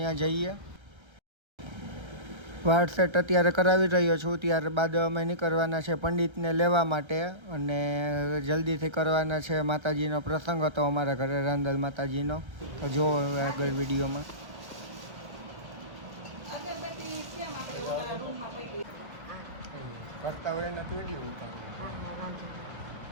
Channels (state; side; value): late; left; 1.3 ms